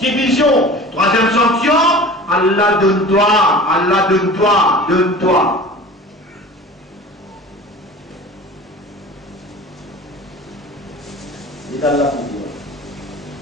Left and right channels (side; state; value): both; normal; correlation 0.39